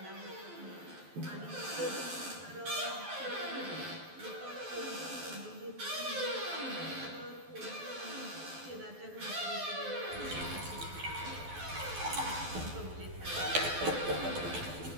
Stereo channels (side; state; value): left; late; 12 ms